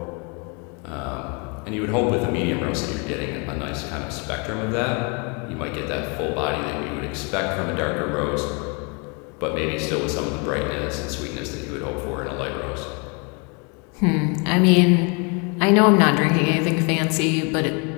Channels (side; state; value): right; quieter; 33.1 dB